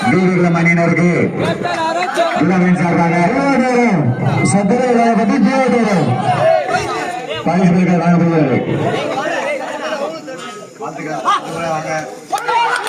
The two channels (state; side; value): identical; both; correlation 1.00